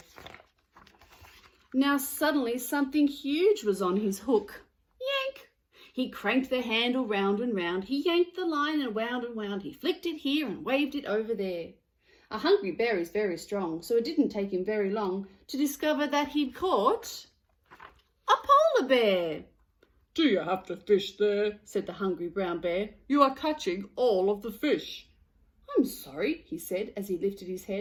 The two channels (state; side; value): identical; both; correlation 1.00